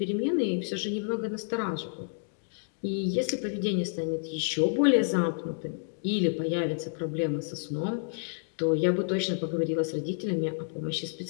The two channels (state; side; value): silent; right; digital silence